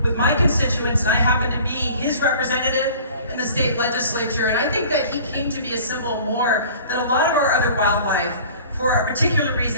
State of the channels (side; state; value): both; inverted; correlation -0.46